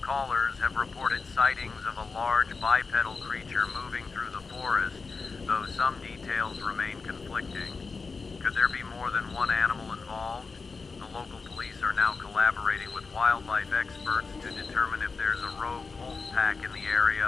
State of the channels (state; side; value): quieter; right; 4.5 dB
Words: callers have reported sightings of a large bipedal creature moving through the forest, though some details remain conflicting. Could there be more than one animal involved? The local police are now collaborating with wildlife experts to determine if there's a rogue wolf pack in the